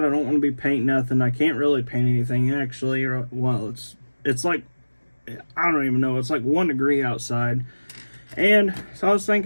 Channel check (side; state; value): both; inverted; correlation -1.00